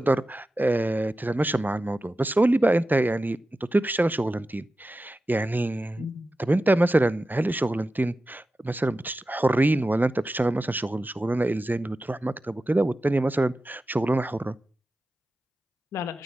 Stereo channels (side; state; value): both; normal; correlation 0.93